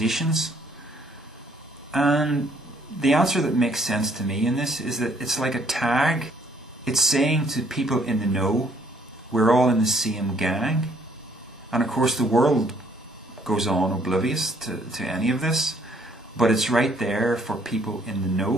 And the answer that makes sense to me in this is that it's like a tag. It's saying to people in the know, we're all in the same gang. And of course the world goes on oblivious to any of this, but it's right there for people in the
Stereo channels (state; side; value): normal; both; correlation 0.64